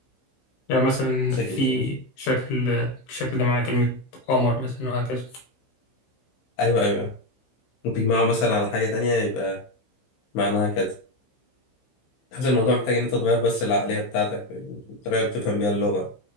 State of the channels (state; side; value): late; right; 15 ms